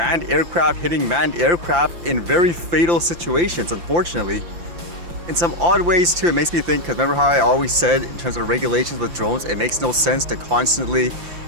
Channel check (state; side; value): late; left; 5.7 ms